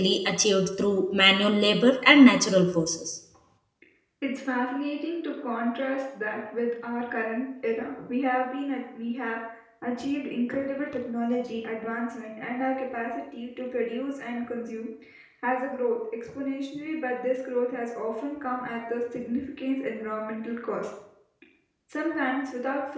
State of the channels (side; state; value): both; identical; correlation 1.00